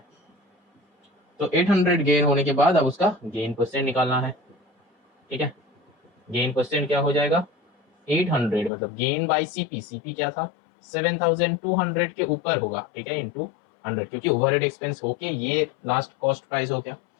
तो 800 गेन होने के बाद अब उसका गेन परसेंट निकालना है, ठीक है। गेन परसेंट क्या हो जाएगा 800 मतलब गेन बाय सीपी, सीपी क्या था 7200 के ऊपर होगा, ठीक है, इंटू 100, क्योंकि ओवरहेड एक्सपेंस होके ये लास्ट कॉस्ट प्राइस हो गया,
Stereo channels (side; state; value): right; drops out; at 8.7 s